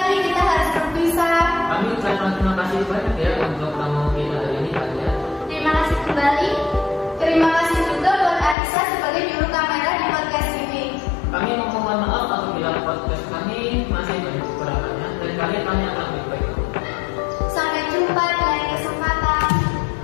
kita harus berpisah. Kami ucapkan terima kasih banyak ya untuk tamu kita hari ini, Kak ya. Terima kasih kembali. Terima kasih juga buat Aisyah sebagai juru kamera di podcast ini. Kami mohon maaf apabila podcast kami masih banyak kekurangannya dan kalian akan lebih baik. Sampai jumpa di lain kesempatan.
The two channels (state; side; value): drops out; right; at 8.6 s